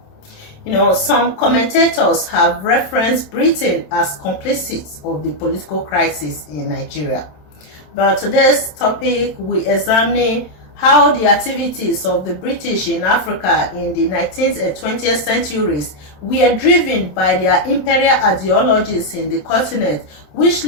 Some commentators have referenced Britain as complicit of the political crisis in Nigeria. But today's topic, we examine how the activities of the British in Africa in the 19th and 20th centuries were driven by their imperial ideologies in the continent, which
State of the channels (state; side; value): late; right; 27 ms